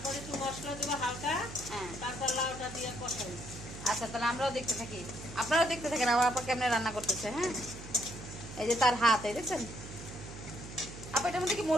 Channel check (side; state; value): right; noise; hum, 12 dB below the sound